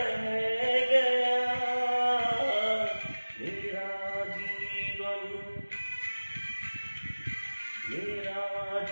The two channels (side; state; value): both; inverted; correlation -1.00